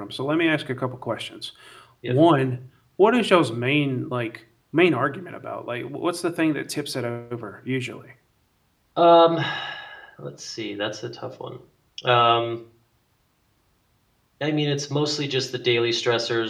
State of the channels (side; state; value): both; identical; correlation 1.00